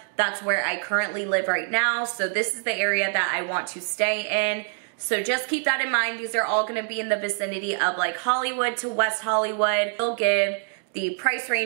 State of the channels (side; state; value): left; silent; 58 dB below the other